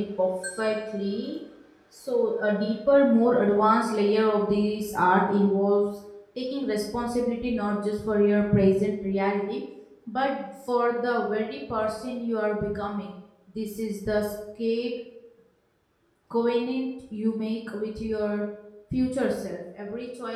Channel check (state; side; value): identical; both; correlation 1.00